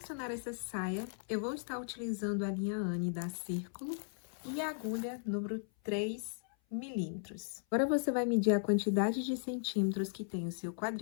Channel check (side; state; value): right; silent; 53 dB below the other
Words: essa saia, eu vou estar utilizando a linha Anne da Círculo e a agulha número 3 milímetros. Agora você vai medir a quantidade de centímetros que tem o seu